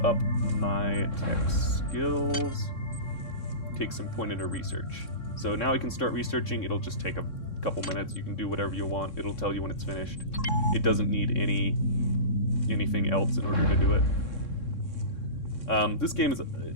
up my tech skills. Take some point into research. So now I can start researching. It'll just take a couple minutes. You can do whatever you want. It'll tell you when it's finished. It doesn't need anything else in order to do it.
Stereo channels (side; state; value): right; late; 3.6 ms